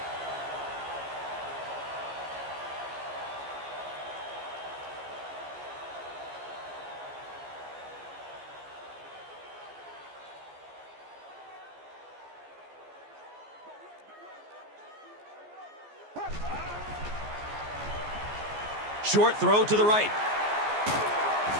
Short throw to the right.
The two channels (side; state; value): left; late; 14 ms